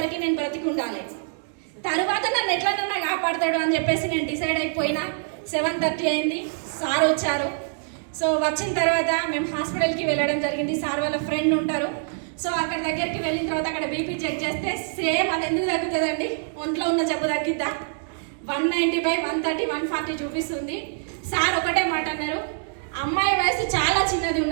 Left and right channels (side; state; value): left; silent; digital silence